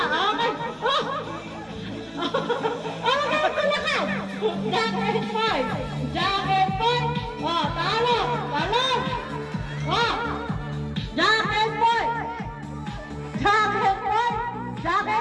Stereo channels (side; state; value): both; identical; correlation 1.00